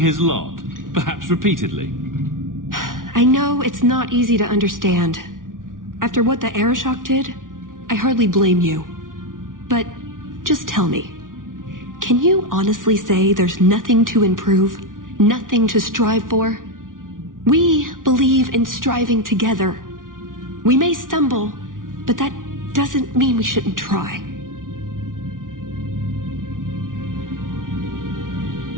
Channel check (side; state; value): left; late; 0.89 ms